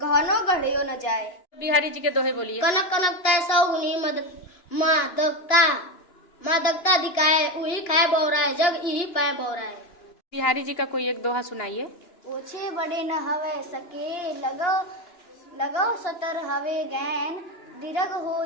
गढ़ियो न जाए। बिहारी जी के दोहे बोलिए। कनक कनकता 100 गुनी, मादकता मादकता अधिकाय, उही खाए बौराए जग, इही पाए बौराए। बिहारी जी का कोई एक दोहा सुनाइए। ओछे बड़े न हवे सके, लगो सतर हवे गैन, दीर्घ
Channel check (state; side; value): late; right; 2.8 ms